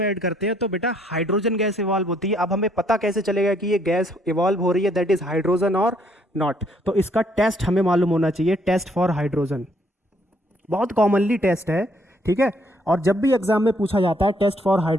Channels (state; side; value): normal; both; correlation 0.68